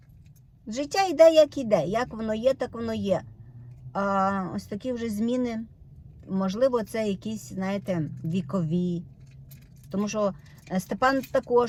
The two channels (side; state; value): both; identical; correlation 1.00